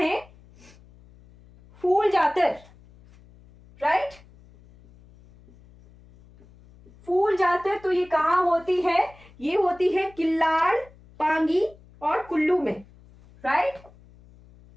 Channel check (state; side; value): noise; left; hum, 25 dB below the sound